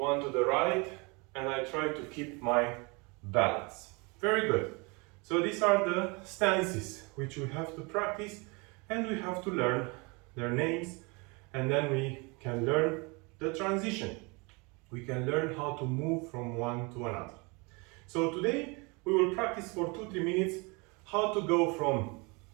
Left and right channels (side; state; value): left; quieter; 29.0 dB